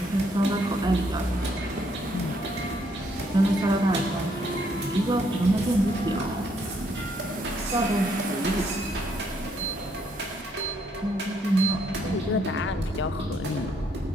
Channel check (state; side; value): normal; both; correlation 0.71